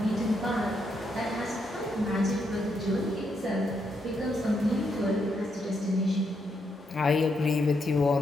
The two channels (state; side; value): normal; both; correlation 0.79